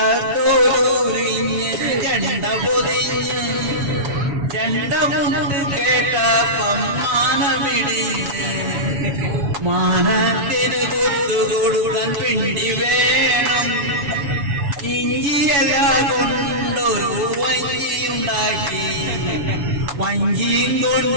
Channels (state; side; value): late; left; 7.1 ms